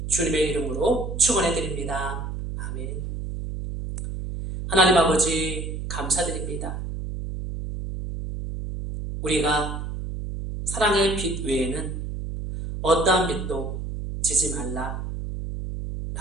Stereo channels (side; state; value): right; noise; hum, 6 dB below the sound